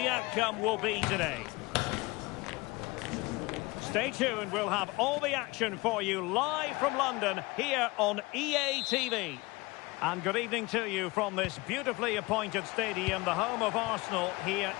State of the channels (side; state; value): right; quieter; 23.6 dB